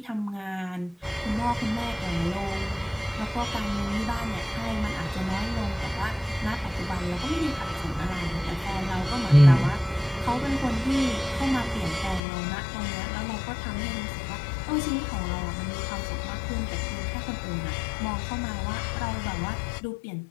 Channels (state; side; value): drops out; right; at 12.2 s